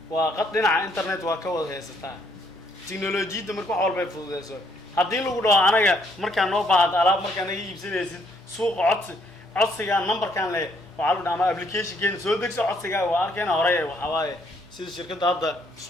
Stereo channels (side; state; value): both; normal; correlation 0.69